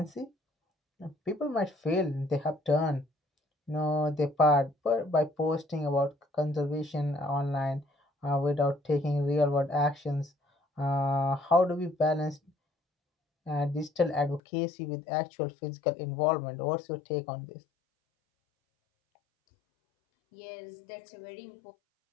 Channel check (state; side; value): drops out; right; at 14.4 s